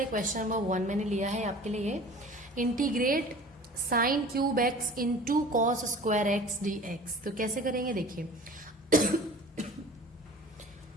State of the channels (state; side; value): normal; both; correlation 0.44